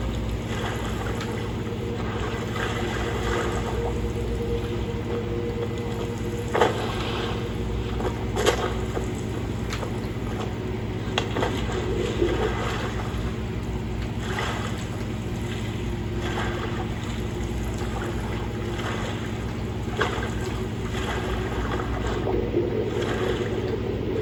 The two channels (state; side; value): identical; both; correlation 1.00